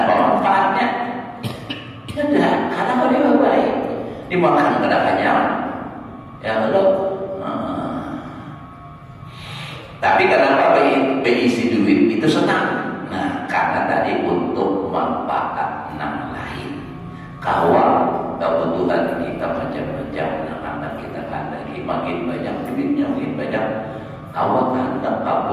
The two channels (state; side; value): identical; both; correlation 1.00